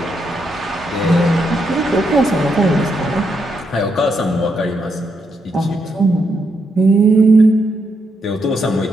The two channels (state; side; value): normal; both; correlation 0.80